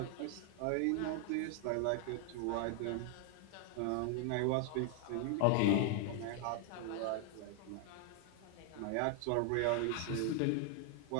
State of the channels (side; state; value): both; different; correlation 0.00